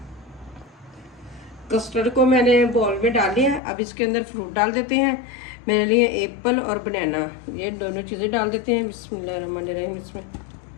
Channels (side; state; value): right; drops out; at 3.6 s